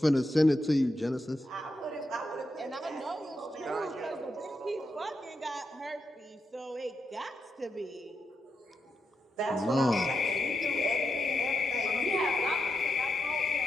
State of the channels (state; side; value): normal; both; correlation 0.86